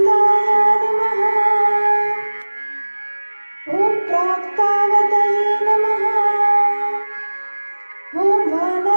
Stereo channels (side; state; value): both; inverted; correlation -1.00